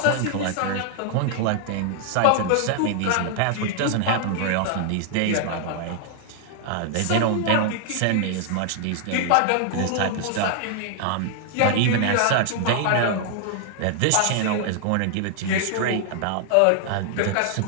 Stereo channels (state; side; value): different; both; correlation 0.00